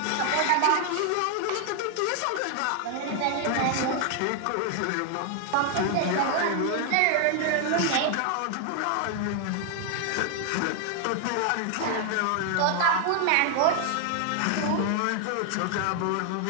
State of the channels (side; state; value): both; different; correlation 0.00